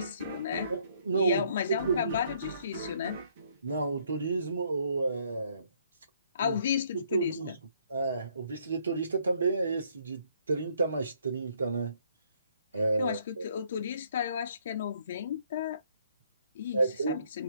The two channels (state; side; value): inverted; both; correlation -0.66